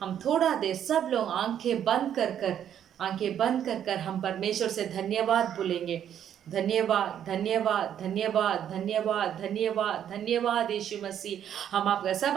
हम थोड़ा देर सब लोग आंखें बंद कर हम परमेश्वर से धन्यवाद बोलेंगे। धन्यवाद, धन्यवाद, धन्यवाद, धन्यवाद, धन्यवाद, धन्यवाद यीशु मसीह। हम आपका सब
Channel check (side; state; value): left; quieter; 9.7 dB